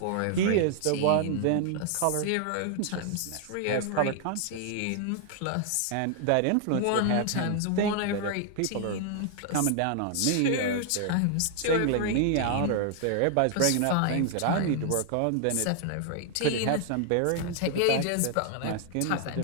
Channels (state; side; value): different; both; correlation 0.00